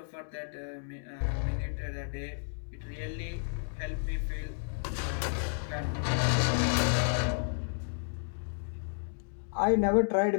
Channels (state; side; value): silent; right; digital silence